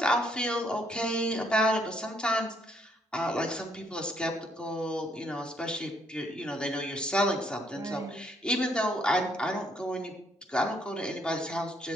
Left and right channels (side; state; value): both; normal; correlation 0.70